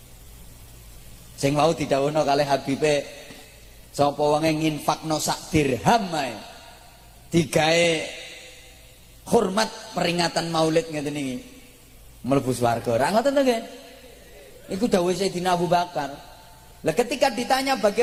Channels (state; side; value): identical; both; correlation 1.00